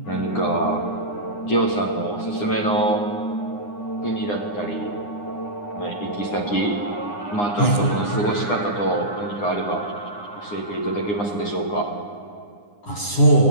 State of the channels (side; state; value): right; late; 9.8 ms